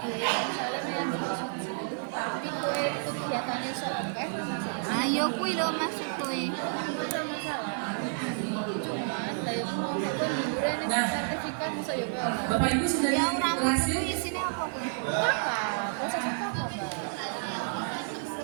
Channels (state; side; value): silent; left; 58 dB below the other